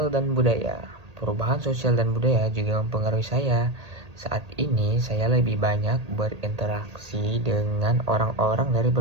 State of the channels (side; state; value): left; late; 1.8 ms